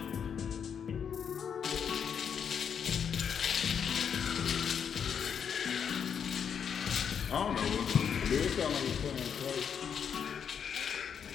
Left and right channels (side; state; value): right; quieter; 7.5 dB